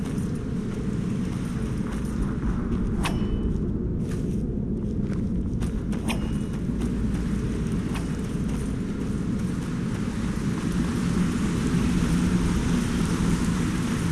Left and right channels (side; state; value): both; identical; correlation 1.00